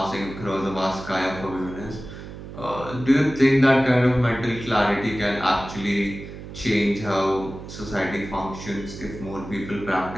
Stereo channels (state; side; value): noise; right; hum, 12 dB below the sound